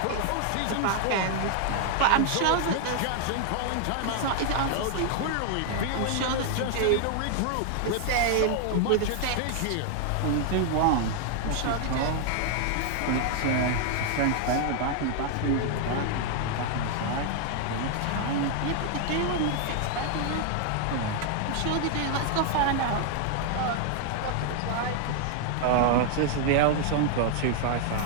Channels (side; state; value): both; different; correlation 0.00